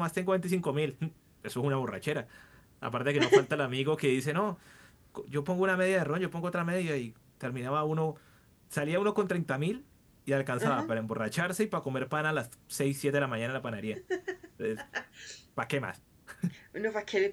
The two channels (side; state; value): both; identical; correlation 1.00